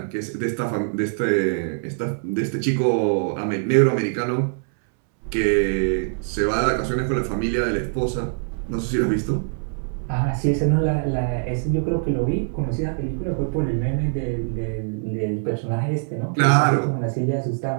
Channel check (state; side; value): silent; left; 63 dB below the other